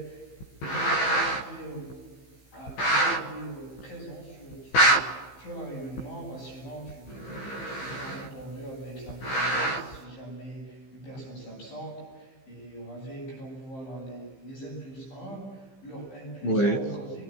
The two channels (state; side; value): late; right; 15 ms